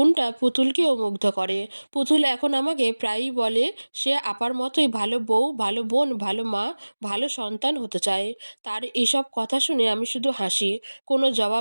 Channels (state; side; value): inverted; both; correlation -1.00